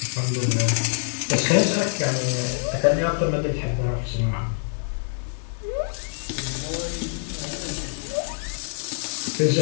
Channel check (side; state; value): right; silent; digital silence